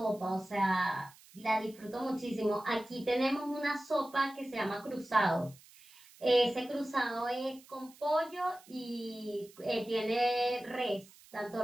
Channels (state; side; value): noise; right; hiss, 24 dB below the sound